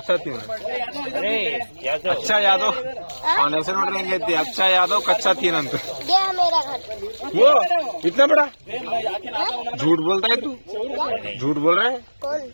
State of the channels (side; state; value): both; inverted; correlation -1.00